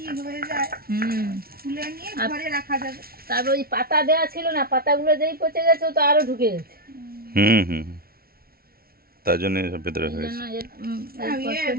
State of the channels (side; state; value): left; late; 0.44 ms